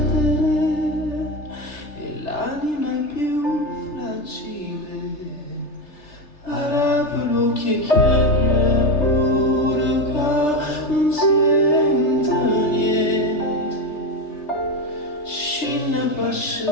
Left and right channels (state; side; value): late; right; 3.3 ms